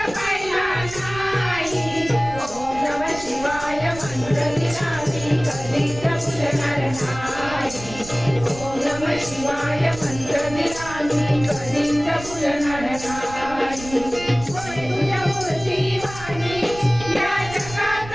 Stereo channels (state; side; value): noise; right; rumble, 14 dB below the sound